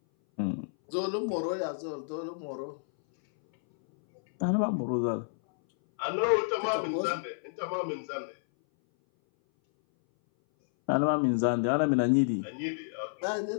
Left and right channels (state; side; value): silent; right; 58 dB below the other